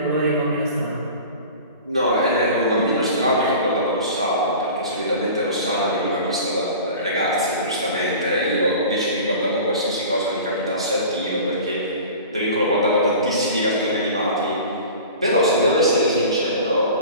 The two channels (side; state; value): both; inverted; correlation -0.38